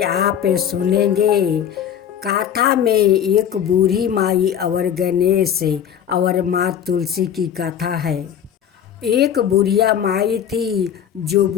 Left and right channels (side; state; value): right; quieter; 9.1 dB